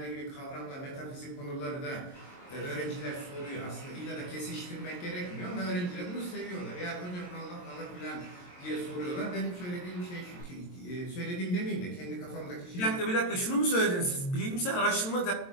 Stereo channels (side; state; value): right; late; 22 ms